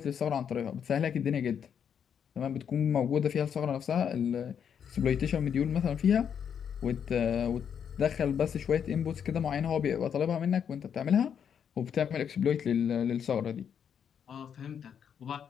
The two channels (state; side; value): quieter; right; 8.0 dB